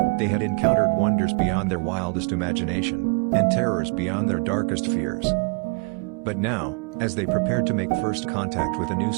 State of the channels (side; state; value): left; quieter; 33.7 dB